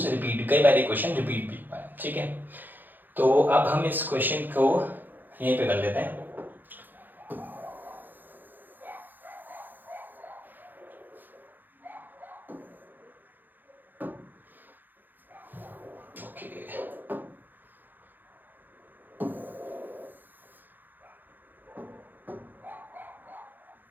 रिपीट, कई बार ये क्वेश्चन रिपीट भी हुआ है। ठीक है, तो अब हम इस क्वेश्चन को यहीं पे कर लेते हैं।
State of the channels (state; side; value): late; left; 0.088 ms